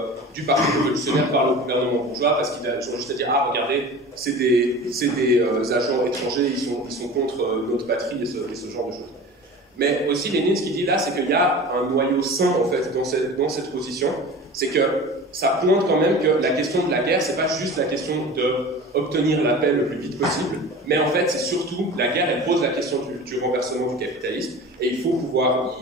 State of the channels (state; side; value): normal; both; correlation 0.36